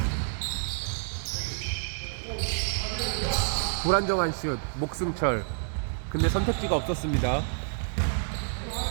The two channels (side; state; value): left; silent; digital silence